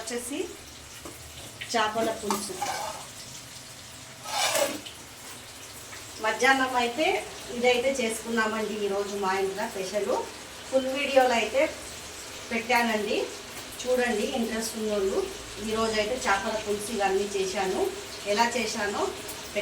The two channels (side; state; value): both; identical; correlation 1.00